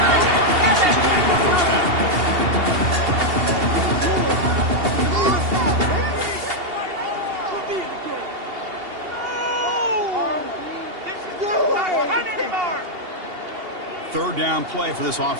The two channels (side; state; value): left; late; 2.8 ms